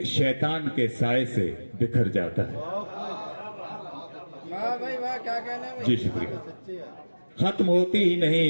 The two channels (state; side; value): inverted; both; correlation -1.00